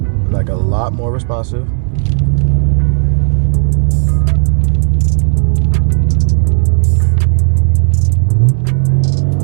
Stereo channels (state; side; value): silent; left; digital silence